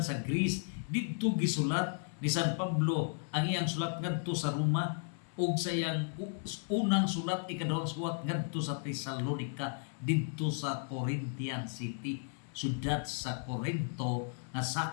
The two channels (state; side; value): silent; right; 55 dB below the other